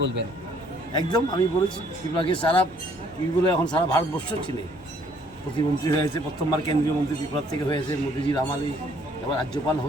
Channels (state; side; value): noise; right; hum, 23 dB below the sound